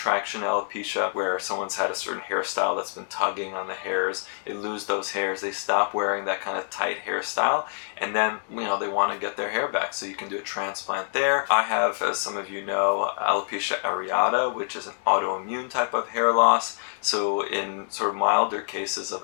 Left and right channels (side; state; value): right; silent; digital silence